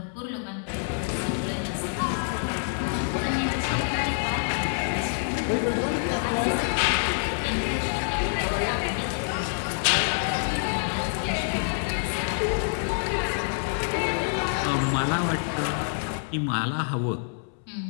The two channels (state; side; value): silent; right; 60 dB below the other